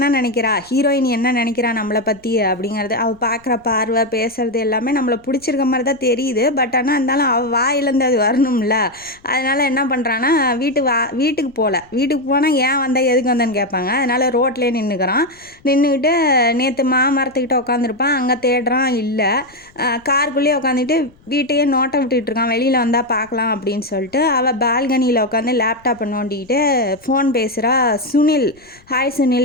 நினைக்கிறா, ஹீரோயின் என்ன நினைக்கிறா நம்மளை பற்றி அப்படிங்கிறது, அவள் பார்க்குற பார்வை பேசுறது எல்லாமே நம்மளை பிடிச்சிருக்க மாதிரி தான் தெரியுது. பட் ஆனால் இருந்தாலும் அவள் வாயிலேருந்து அது வரணும்ல. அதனால் என்ன பண்ணுறான்னா, வீட்டுக்கு போகல, வீட்டுக்கு போனால் ஏன் வந்தால் எதுக்கு வந்தேன்னு கேட்பாங்க. அதனால் ரோட்லேயே நின்றுக்கிட்டு நேற்று மாமரத்துக்கிட்ட உட்காந்துருப்பான், அங்கே தேடுறான் இல்லை, காருக்குள்ளேயே உட்காந்துட்டு வீட்டையே நோட்டை விட்டுட்டு இருக்கான், வெளியில் வந்தால் பார்க்கலாம் அப்படின்னு சொல்லிட்டு அவள் பால்கனியில் உட்காந்து லேப்டாப்பை நோண்டிக்கிட்டு ஃபோன் பேசுகிறா. சுனில், ஹாய்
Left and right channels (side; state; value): left; noise; rumble, 29 dB below the sound